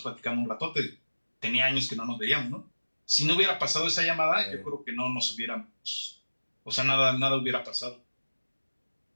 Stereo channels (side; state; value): both; inverted; correlation -1.00